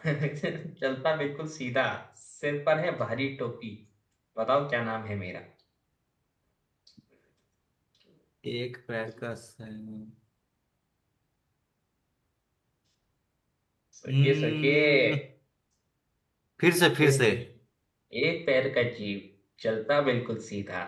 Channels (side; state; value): both; identical; correlation 1.00